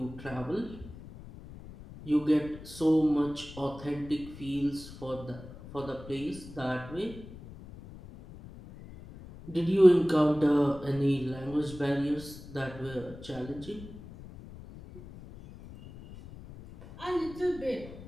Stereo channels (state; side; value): noise; left; rumble, 16 dB below the sound